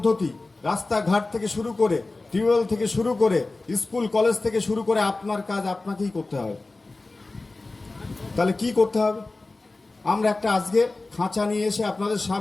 রাস্তাঘাট থেকে শুরু করে, টিউবওয়েল থেকে শুরু করে, স্কুল কলেজ থেকে শুরু করে আপনার কাজ আপনাকেই করতে হবে। তাহলে কি করতে হবে? আমরা একটা আজকে খাঁচা নিয়ে এসে আপনাদের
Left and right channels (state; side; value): quieter; right; 3.3 dB